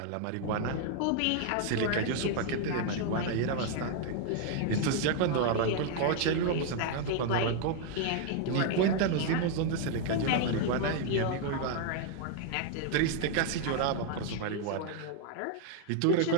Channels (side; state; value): both; different; correlation 0.00